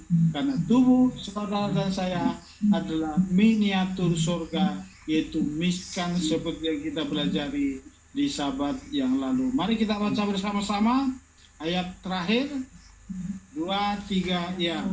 karena tubuh saudara dan saya adalah miniatur surga, yaitu miskan seperti yang kita pelajari di Sabat yang lalu. Mari kita baca bersama-sama ayat terakhir 2-3 ya.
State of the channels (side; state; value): both; identical; correlation 1.00